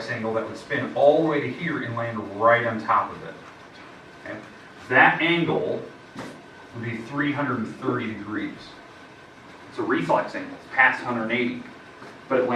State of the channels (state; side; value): identical; both; correlation 1.00